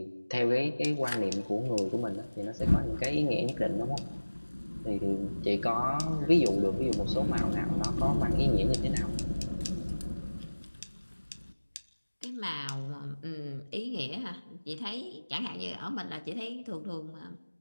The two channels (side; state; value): both; inverted; correlation -1.00